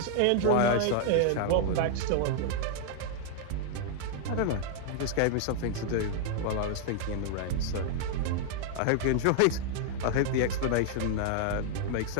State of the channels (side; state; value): both; different; correlation -0.01